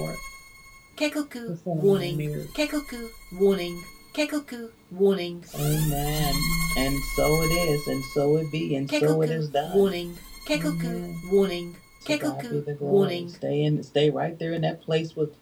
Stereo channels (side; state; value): both; identical; correlation 1.00